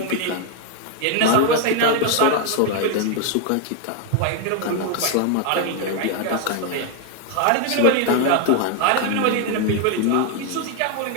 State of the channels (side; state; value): both; different; correlation 0.01